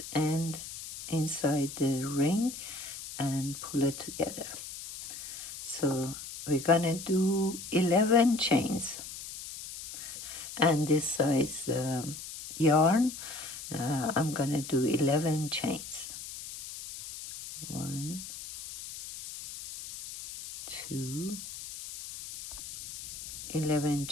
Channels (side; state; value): left; noise; hiss, 11 dB below the sound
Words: end inside the ring and pull it together. So we're gonna do 11 chains. And this size yarn, I'm gonna do 11 chains. 1, 2, 11